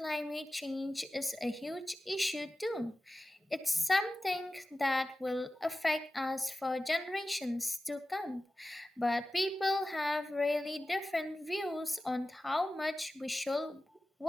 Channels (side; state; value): both; normal; correlation 0.94